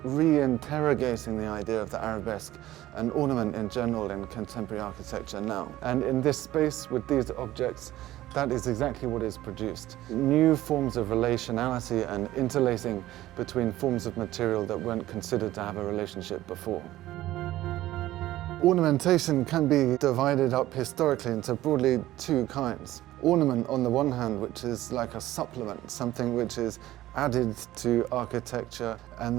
re-interrogating the idea of the arabesque and ornament in general in contemporary architecture now. And in this space, with these objects, that is exactly what is produced. New forms of relationality and interlacing between forms of material that weren't considered to have a relationship before. Ornamentation can be divided up historically into broadly two kinds. Ornament on the one hand, which is like a supplement, something which is added to architecture and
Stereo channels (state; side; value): quieter; left; 15.3 dB